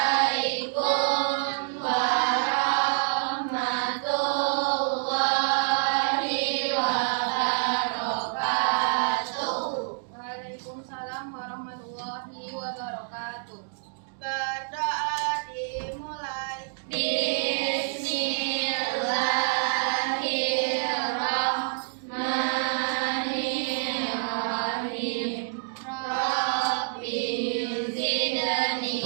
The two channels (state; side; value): silent; left; digital silence